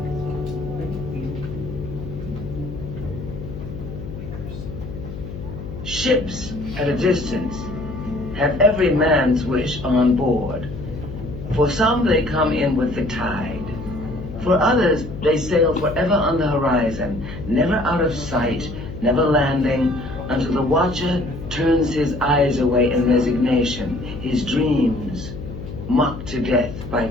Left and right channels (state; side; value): noise; left; hum, 10 dB below the sound